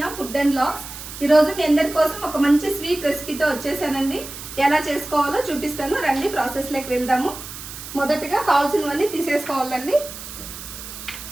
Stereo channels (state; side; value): noise; right; hiss, 12 dB below the sound